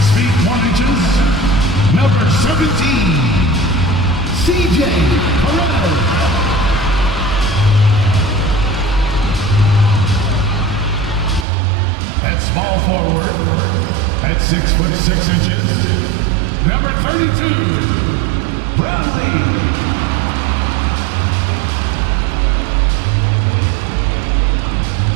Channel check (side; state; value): left; drops out; at 11.5 s